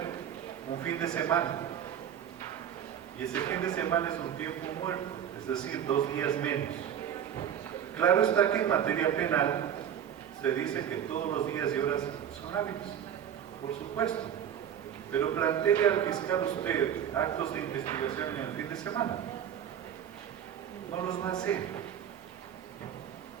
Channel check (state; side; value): quieter; left; 9.3 dB